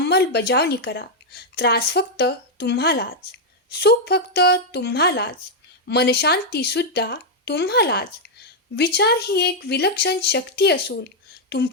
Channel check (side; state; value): both; normal; correlation -0.01